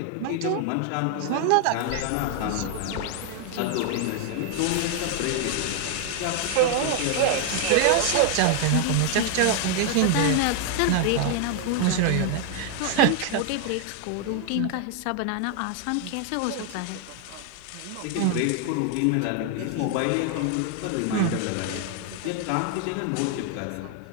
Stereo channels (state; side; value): different; both; correlation 0.00